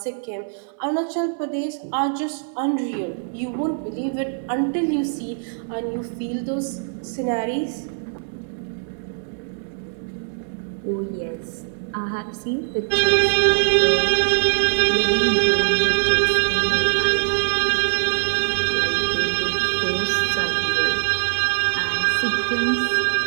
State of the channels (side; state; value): left; silent; 64 dB below the other